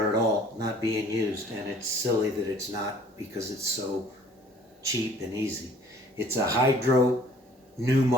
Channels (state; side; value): normal; both; correlation 0.54